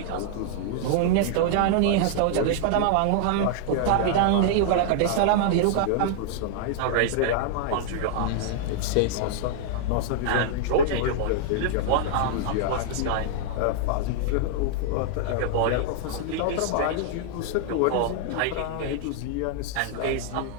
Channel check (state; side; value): different; both; correlation -0.01